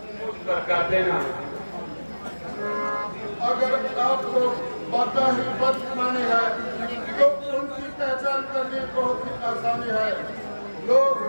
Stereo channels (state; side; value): inverted; both; correlation -1.00